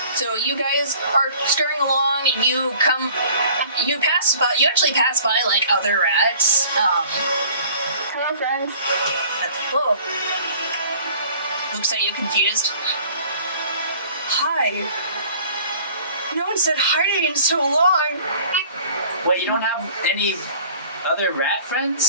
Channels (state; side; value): inverted; both; correlation -0.50